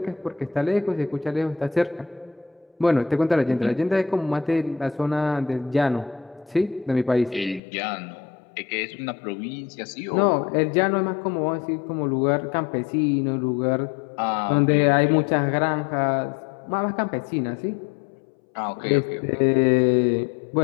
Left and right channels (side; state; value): right; drops out; at 7.6 s